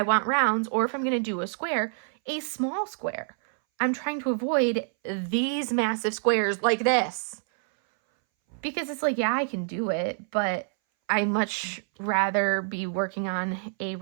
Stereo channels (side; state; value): left; silent; 60 dB below the other